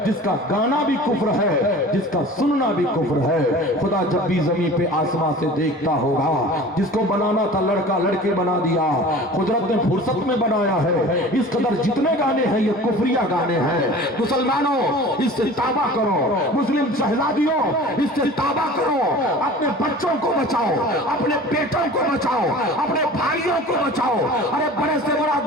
جس کا گانا بھی کفر ہے، جس کا سننا بھی کفر ہے، خدا جب بھی زمین پہ آسمان سے دیکھتا ہوگا۔ جس کو بنانا تھا لڑکا لڑکے بنا دیا، قدرت نے فرصت میں بنایا ہے۔ اس قدر جتنے گانے ہیں یہ کفریہ گانے ہیں۔ مسلمانوں اس سے توبہ کرو، مسلم شہزادیوں اس سے توبہ کرو، اپنے بچوں کو بچاؤ، اپنے بیٹوں کو بچاؤ، اپنے بھائیوں کو بچاؤ۔ ارے بڑے سے بڑا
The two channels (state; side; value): normal; both; correlation 0.41